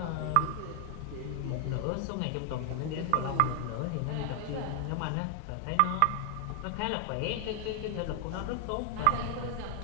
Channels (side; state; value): both; different; correlation 0.00